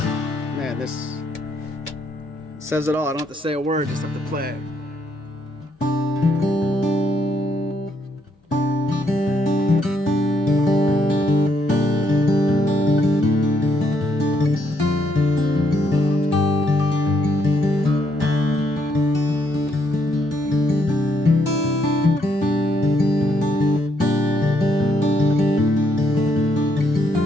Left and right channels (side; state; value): both; normal; correlation 0.73